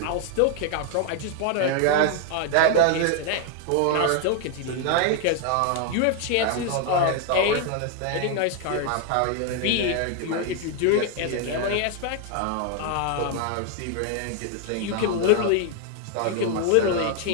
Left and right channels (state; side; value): different; both; correlation 0.00